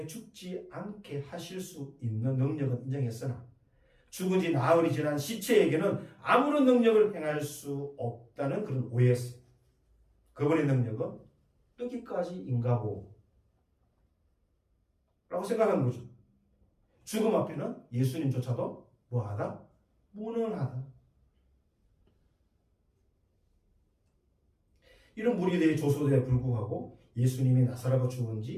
죽지 않게 하실 수 있는 능력은 인정했으나 죽은 지 나흘이 지난 시체에게는 아무런 능력을 행할 수 없다는 그런 오해였어요. 그분의 능력은 여기까지인가보 라고 생각한 거죠. 죽음 앞에는 예수님조차도 뭐하다? 무능하다. 이런 무리들의 조소대에 불구하고 예수님이 나사로가 죽은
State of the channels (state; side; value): identical; both; correlation 1.00